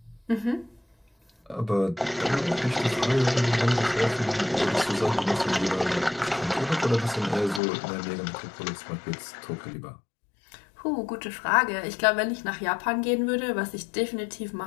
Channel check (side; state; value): right; drops out; at 7.6 s